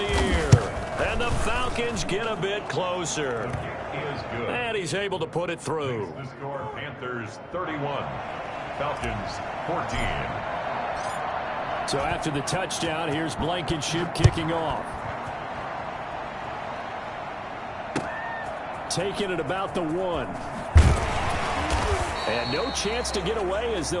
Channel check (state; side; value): identical; both; correlation 1.00